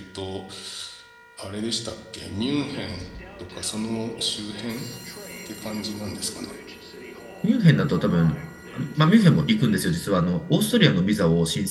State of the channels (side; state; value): both; identical; correlation 1.00